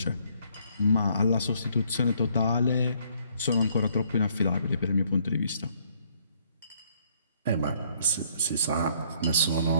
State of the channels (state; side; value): inverted; both; correlation -0.66